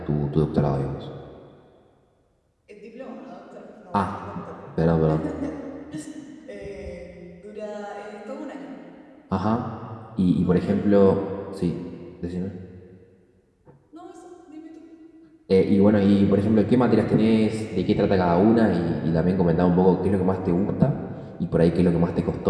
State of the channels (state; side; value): identical; both; correlation 1.00